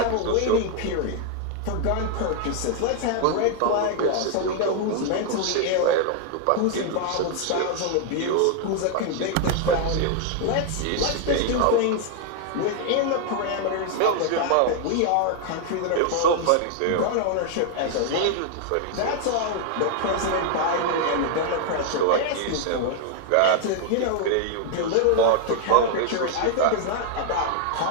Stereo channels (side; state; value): both; different; correlation 0.00